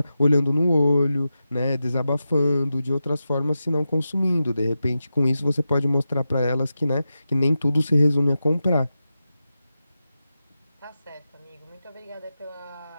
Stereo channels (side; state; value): both; inverted; correlation -0.91